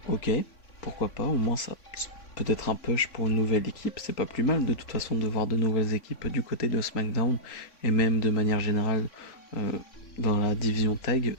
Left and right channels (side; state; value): right; late; 3.5 ms